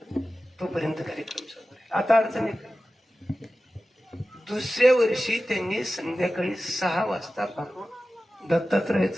तोपर्यंत कार्यक्रम चालू आहे. आता अडचण आहे. दुसऱ्या वर्षी त्यांनी संध्याकाळी 6 वाजता पाहून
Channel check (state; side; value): normal; both; correlation 0.95